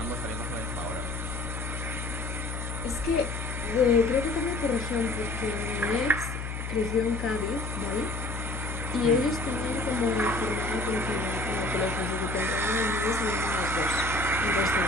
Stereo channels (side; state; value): left; noise; hum, 5 dB below the sound